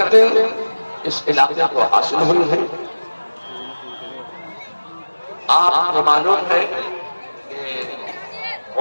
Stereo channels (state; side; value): inverted; both; correlation -1.00